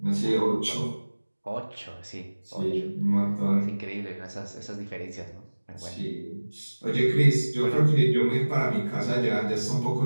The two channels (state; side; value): inverted; both; correlation -1.00